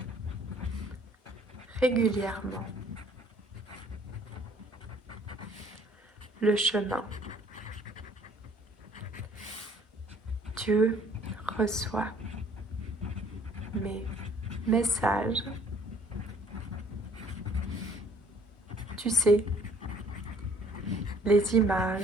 régulièrement le chemin. Tu reçois mes messages. Tu sais, les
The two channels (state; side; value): normal; both; correlation 0.58